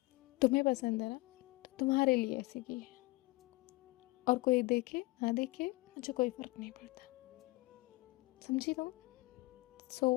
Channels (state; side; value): quieter; right; 22.3 dB